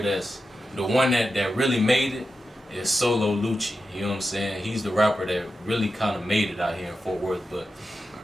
that's the one that really made it is Solo Lucci. You know what I'm saying? He's the rapper that really kind of made it out here in Fort Worth. But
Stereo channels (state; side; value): normal; both; correlation 0.91